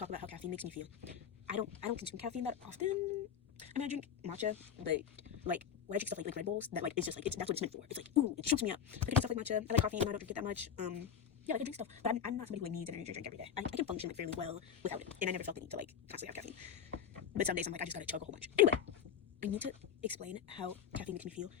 about how caffeine makes me feel. I don't consume caffeine that often. I mean, I drink matcha, but like when I drink stuff like Red Bulls, that like it's just like that's what it's meant for. It's like, ooh, it shoots me up. Like I drink stuff like matcha. I like coffee, even though I don't drink it that much. Yeah, like I drink stuff, but I'm not somebody who like needs an energy drink every day. I can function like fairly well without it, and I never felt the need to like constantly have caffeine. But some days I'm like, I just gotta chug a whole bunch. Anyway, I need to explain how caffeine makes me feel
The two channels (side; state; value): right; quieter; 8.2 dB